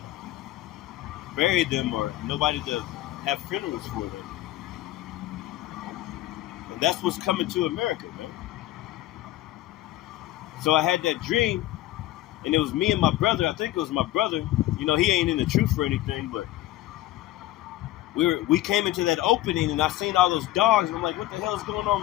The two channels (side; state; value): right; quieter; 15.4 dB